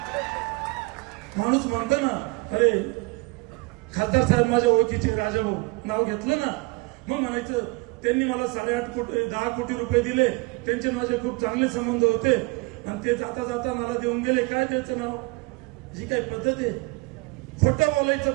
माणूस म्हणतो ना, अरे खासदार साहेब माझ्या ओळखीचे राजाभाऊ, नाव घेतलं ना, मग म्हणायचं त्यांनी मला 10 कोटी रुपये दिले, त्यांचे माझे खूप चांगले संबंध होते आणि ते जाता जाता मला देऊन गेले. काय त्याचं नाव, जी काही पद्धत आहे, खोटं बोलायचं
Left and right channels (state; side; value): quieter; left; 26.1 dB